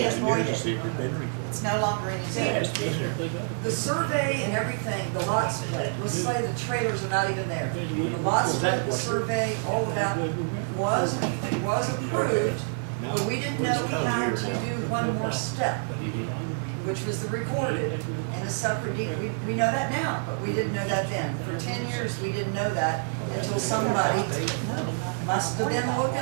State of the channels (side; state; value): left; silent; 60 dB below the other